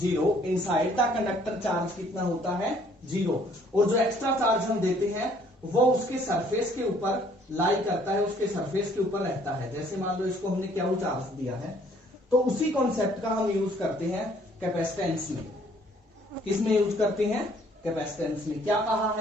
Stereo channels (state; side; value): normal; both; correlation 0.61